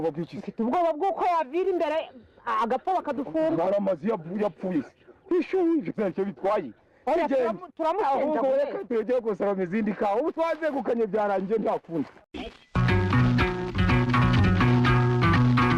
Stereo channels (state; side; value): identical; both; correlation 1.00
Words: bw'ikisi. Ubwoba bw'uko yavira imbere agapfa bakadufunga. Baramazi yapfuye. Ishuye cyo bitwaye. Turamusenja. Ahubwo reka tugiye gusaba izindi kawa. Ubu twazegukanye byarangiye ntakundi.